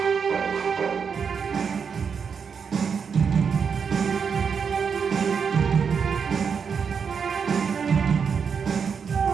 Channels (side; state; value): left; quieter; 6.3 dB